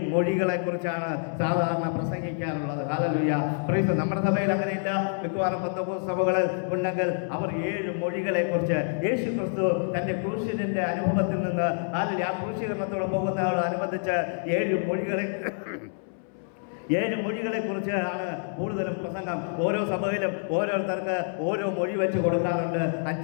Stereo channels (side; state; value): right; silent; 60 dB below the other